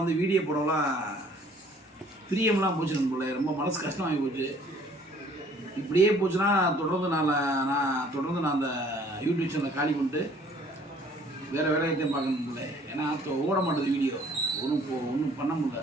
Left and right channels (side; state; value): both; normal; correlation 0.57